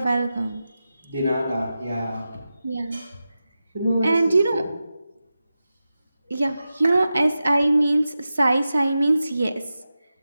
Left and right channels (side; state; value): both; inverted; correlation -0.92